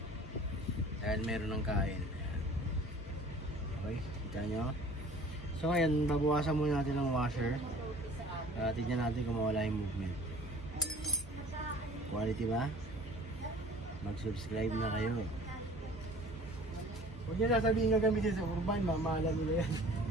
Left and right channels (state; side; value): normal; both; correlation 0.48